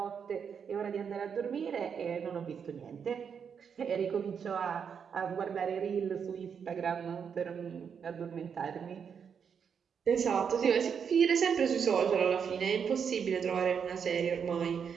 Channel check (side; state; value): left; quieter; 7.0 dB